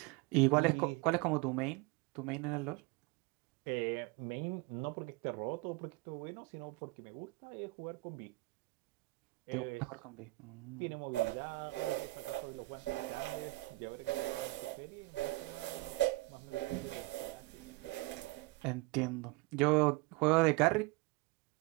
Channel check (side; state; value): left; quieter; 22.4 dB